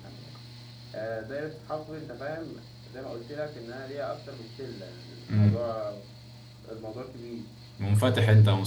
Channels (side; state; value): both; identical; correlation 1.00